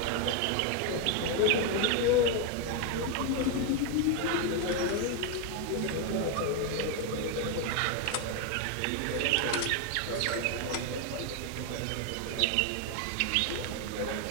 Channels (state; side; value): different; both; correlation 0.01